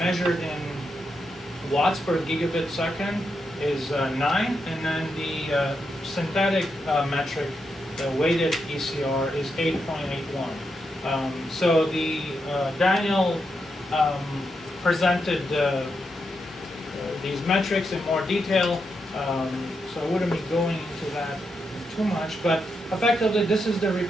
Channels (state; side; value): normal; both; correlation 0.84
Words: in watts per gigabit second is 9, and then the synthetic metric, the weighted ECR, is 8.81. So the Daniel presented these metrics in more detail, so I wouldn't be going into that too much, but effectively this is the